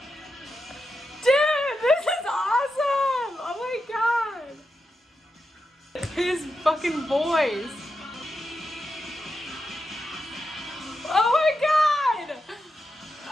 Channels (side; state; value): both; normal; correlation 0.87